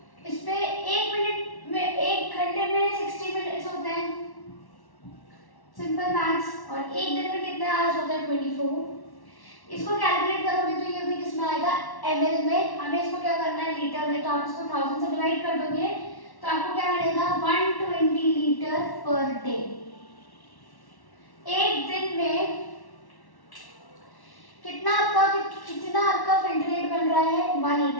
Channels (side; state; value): right; late; 1.1 ms